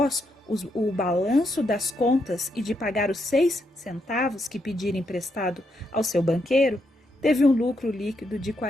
o balanço das contas e de pagar os 6 centavos que pedira emprestado ao seu banqueiro, teve um lucro líquido de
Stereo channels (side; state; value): both; normal; correlation 0.80